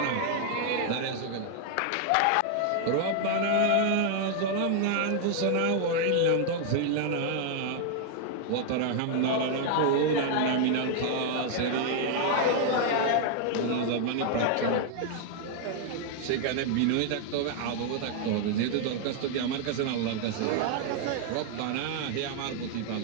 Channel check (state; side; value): different; both; correlation 0.00